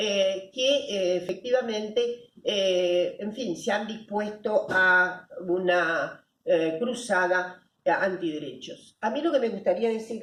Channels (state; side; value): identical; both; correlation 1.00